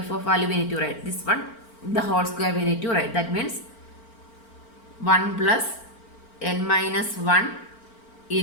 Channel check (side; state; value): right; late; 4.4 ms